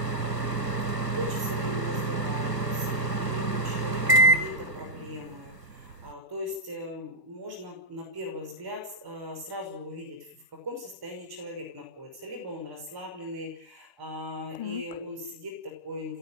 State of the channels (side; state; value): left; late; 1.4 ms